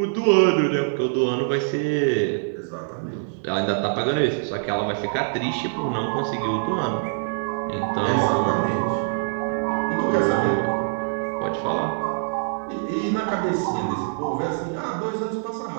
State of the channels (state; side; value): silent; left; digital silence